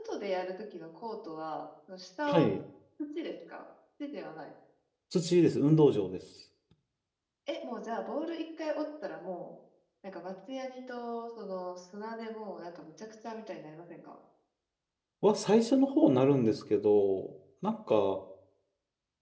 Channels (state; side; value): identical; both; correlation 1.00